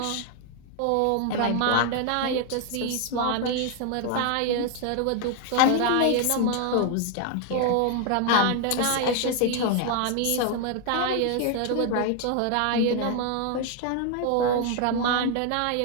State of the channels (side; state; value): both; different; correlation 0.01